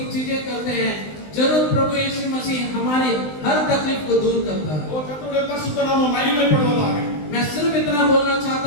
चीजें करते हैं, जरूर प्रभु यीशु मसीह हमारी हर तकलीफ को दूर करता है। ஓ கர்த்தருடைய பரிசுத்த நாமம் மகிமைப்படுவதாக. मैं सिर्फ इतना बोलना चाहता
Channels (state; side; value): late; right; 20 ms